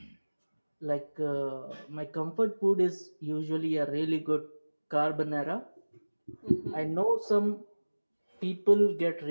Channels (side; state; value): both; inverted; correlation -1.00